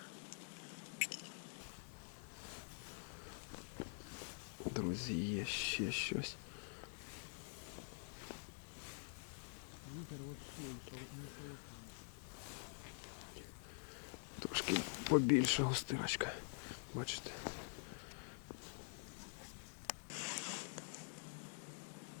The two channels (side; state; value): right; silent; digital silence